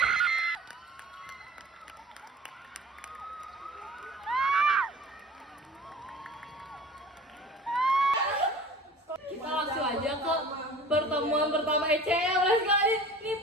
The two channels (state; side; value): normal; both; correlation 0.43